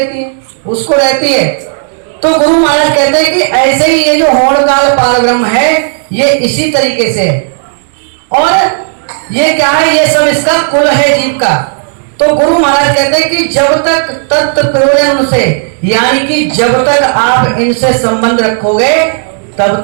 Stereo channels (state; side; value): silent; left; digital silence